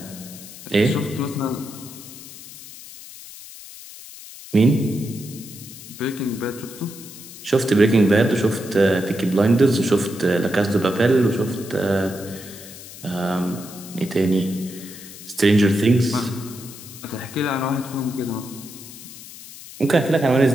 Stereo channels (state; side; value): noise; left; hiss, 16 dB below the sound